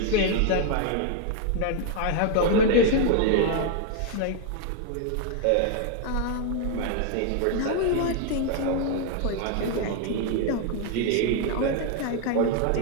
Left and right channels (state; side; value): different; both; correlation 0.00